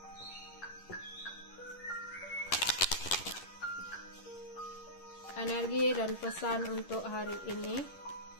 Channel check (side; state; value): right; late; 11 ms